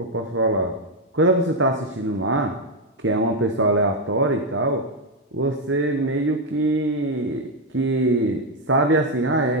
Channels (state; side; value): normal; both; correlation 0.04